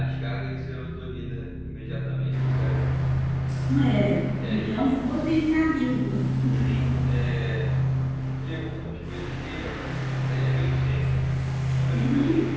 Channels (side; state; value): both; identical; correlation 1.00